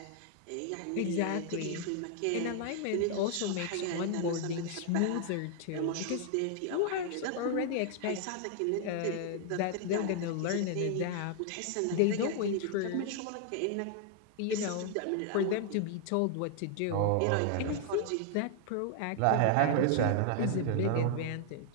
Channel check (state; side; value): different; both; correlation 0.00